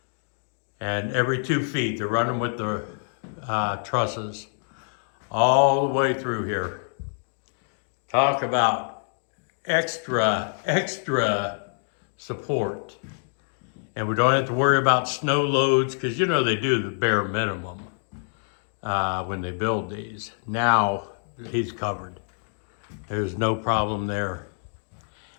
And every 2 feet, they're running with the trusses all the way through here. Talk about extra support. And we don't have to worry about snow loads, because you know they do the bare minimum when they build these. Now he's covered. There's no problem there.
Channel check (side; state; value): right; silent; 61 dB below the other